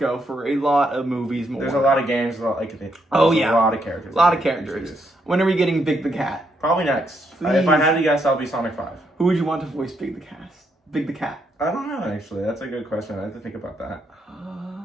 for a lot of movies more. There's a lot of games, a lot of characters. A lot of characters. When are we getting Big the Cat? Probably next. If I had to guess, I'll be Sonic 5. Who would you want to voice Big the Cat? I don't know, actually. That's a good question. I have to think about that.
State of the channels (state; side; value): normal; both; correlation 0.77